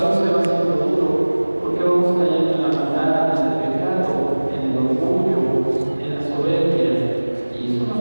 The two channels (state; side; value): inverted; both; correlation -1.00